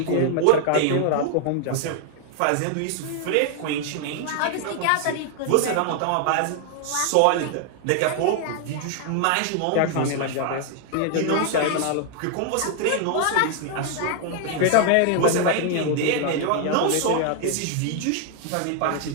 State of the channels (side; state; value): both; different; correlation 0.00